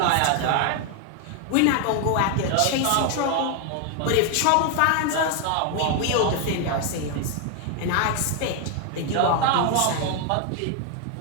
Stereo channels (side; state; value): both; different; correlation 0.01